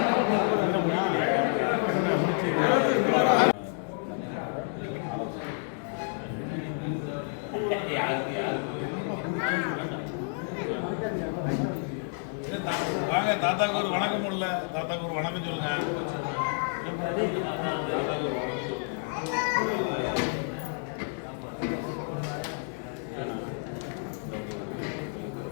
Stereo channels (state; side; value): silent; right; 56 dB below the other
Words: வாங்க, தாத்தாக்கு ஒரு வணக்கம் இல்ல, தாத்தாக்கு ஒரு வணக்கம் சொல்லுங்க.